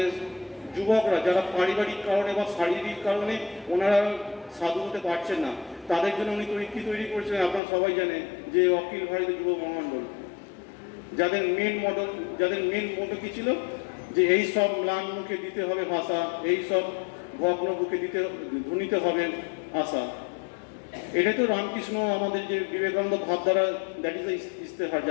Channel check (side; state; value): right; drops out; at 7.6 s